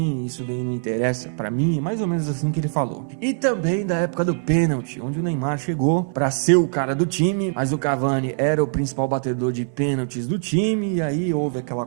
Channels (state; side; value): silent; left; 61 dB below the other